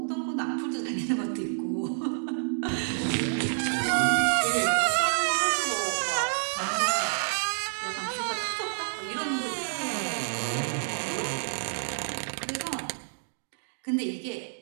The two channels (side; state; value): left; silent; digital silence